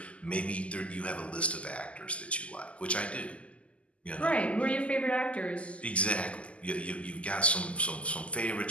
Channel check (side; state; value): right; late; 0.060 ms